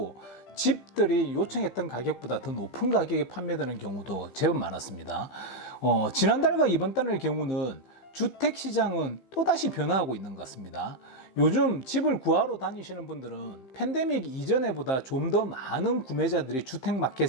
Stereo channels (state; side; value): late; right; 15 ms